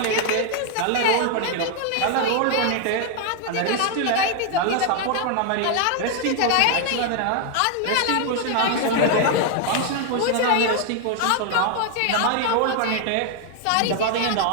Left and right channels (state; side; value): different; both; correlation 0.00